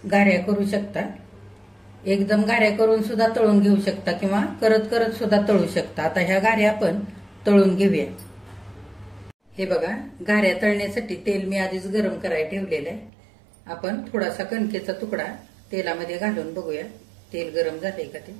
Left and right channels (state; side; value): drops out; left; at 13.1 s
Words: घाऱ्या करू शकता. एकदम घाऱ्या करून सुद्धा तळून घेऊ शकता किंवा करत करत सुद्धा तळू शकता. आता ह्या घाऱ्या आपण तळून घेऊया. हे बघा, घाऱ्या तळण्यासाठी तेल मी आधीच गरम करायला ठेवलेलं आहे. आपण थोडासा कणकेचा तुकडा तेलामध्ये घालून बघूया तेल गरम झालंय का ते.